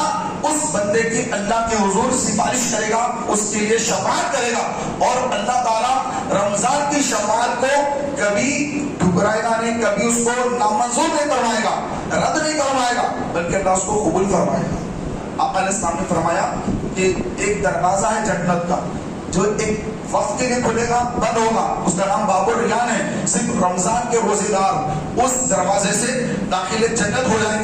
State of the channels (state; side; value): identical; both; correlation 1.00